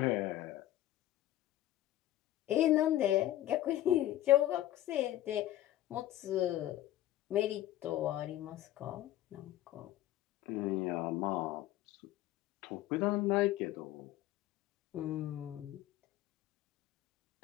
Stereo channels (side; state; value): right; quieter; 14.2 dB